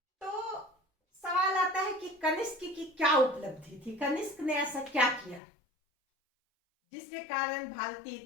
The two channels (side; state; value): right; drops out; at 5.4 s